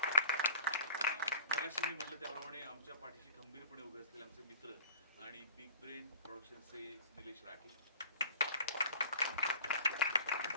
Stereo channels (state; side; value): inverted; both; correlation -0.44